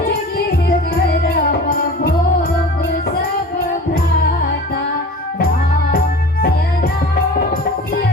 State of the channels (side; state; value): both; normal; correlation 0.39